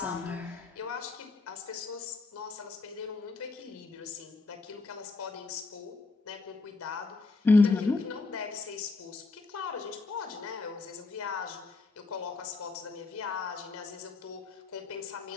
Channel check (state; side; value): quieter; right; 3.7 dB